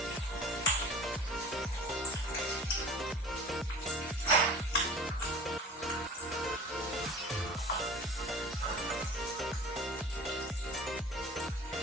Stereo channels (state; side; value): normal; both; correlation 0.40